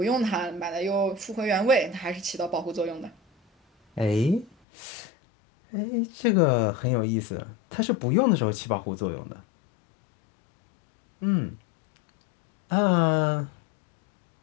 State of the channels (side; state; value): right; drops out; at 4.5 s